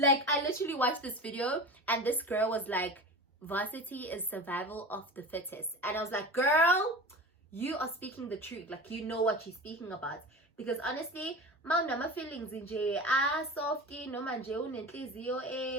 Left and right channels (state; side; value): normal; both; correlation 0.32